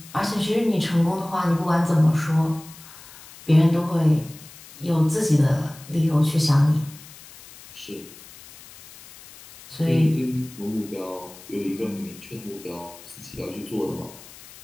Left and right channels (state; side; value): noise; left; hiss, 19 dB below the sound